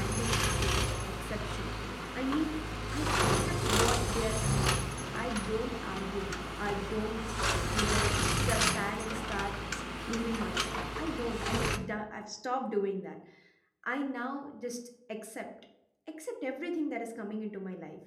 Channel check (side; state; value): both; identical; correlation 1.00